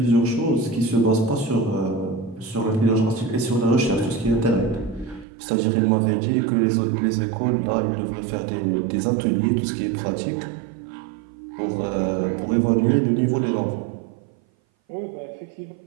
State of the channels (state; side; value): drops out; left; at 5.2 s